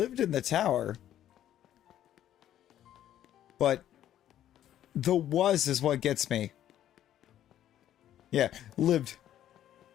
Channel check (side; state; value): right; quieter; 11.6 dB